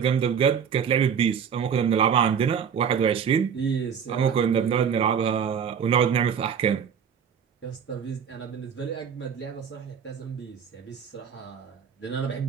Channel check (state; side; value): quieter; left; 7.4 dB